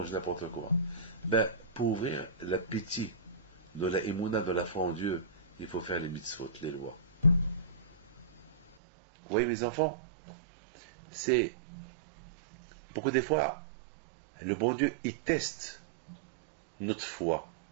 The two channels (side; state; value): left; drops out; at 8.8 s